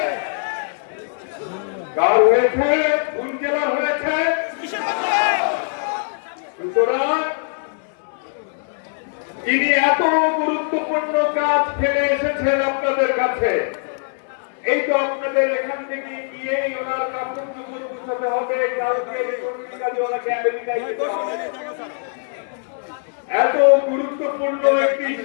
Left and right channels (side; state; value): right; silent; digital silence